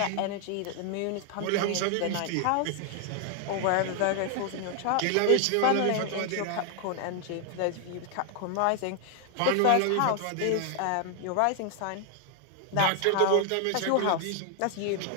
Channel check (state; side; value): different; both; correlation 0.00